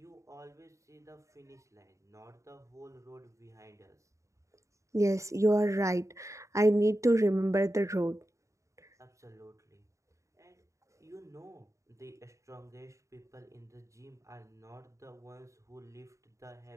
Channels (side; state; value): left; late; 0.15 ms